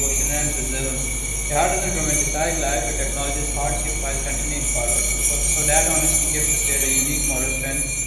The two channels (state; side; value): identical; both; correlation 1.00